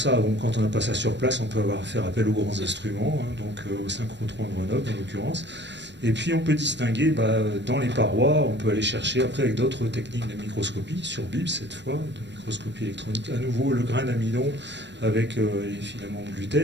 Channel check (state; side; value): late; left; 0.52 ms